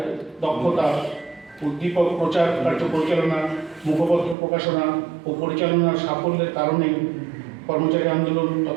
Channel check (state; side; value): drops out; left; at 4.4 s